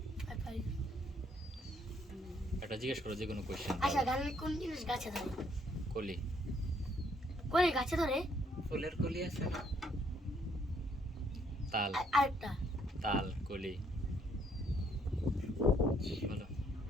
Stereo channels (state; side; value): normal; both; correlation 0.69